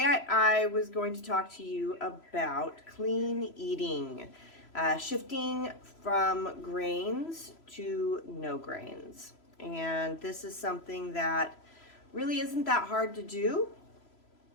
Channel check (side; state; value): right; late; 3.0 ms